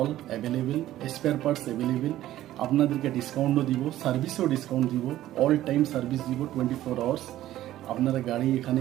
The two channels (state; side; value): quieter; left; 13.9 dB